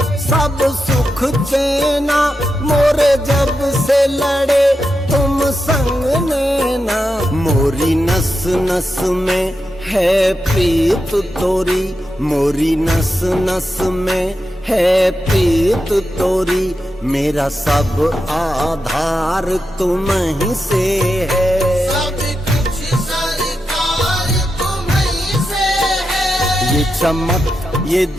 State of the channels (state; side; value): normal; both; correlation 0.88